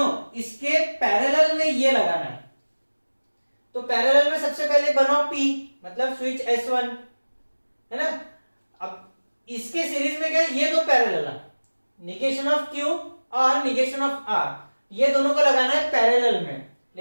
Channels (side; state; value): both; inverted; correlation -1.00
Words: इसके पैरेलल में ये लगाना है। तो पैरेलल में सबसे पहले बनाओ P, मतलब स्विच S1, है ना। अब इसके सीरीज में क्या है? ये दो पैरेलल है, निगेशन ऑफ Q और निगेशन ऑफ R, ये दोनों को लगाना है पैरेलल में।